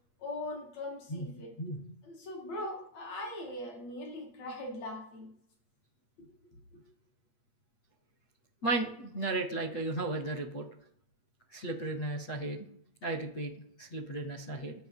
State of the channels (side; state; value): right; late; 8.5 ms